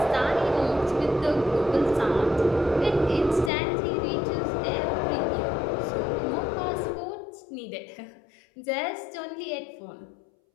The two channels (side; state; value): right; drops out; at 3.5 s